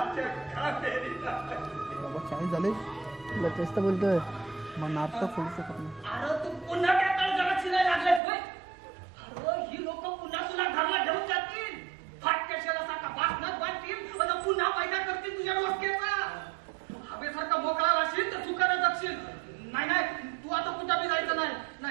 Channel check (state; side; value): drops out; left; at 8.2 s